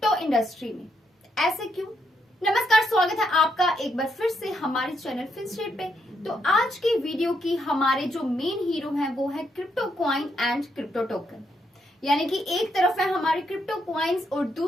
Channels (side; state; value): both; normal; correlation 0.78